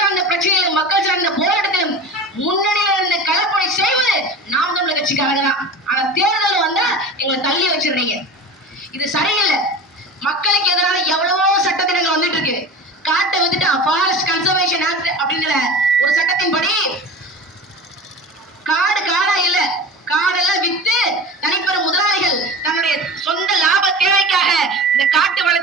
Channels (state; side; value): normal; both; correlation 0.33